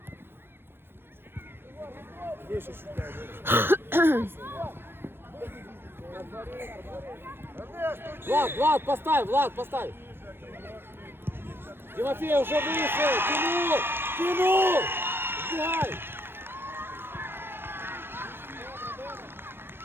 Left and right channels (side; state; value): left; late; 0.11 ms